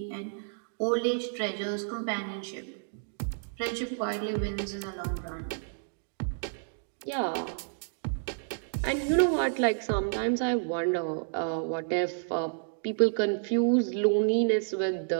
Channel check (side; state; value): left; silent; digital silence